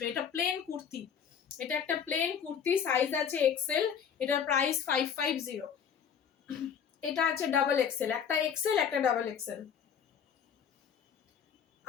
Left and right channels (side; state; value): right; quieter; 7.6 dB